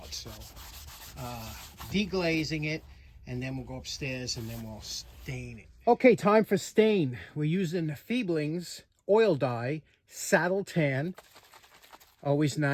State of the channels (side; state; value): both; identical; correlation 1.00